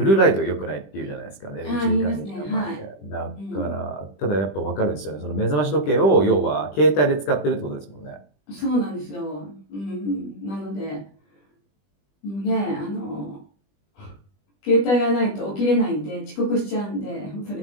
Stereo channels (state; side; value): late; right; 20 ms